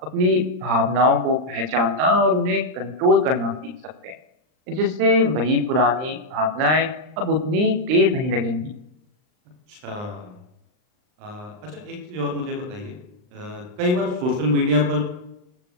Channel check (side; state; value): left; late; 39 ms